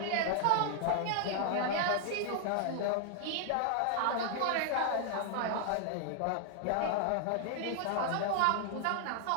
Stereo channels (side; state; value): both; different; correlation 0.00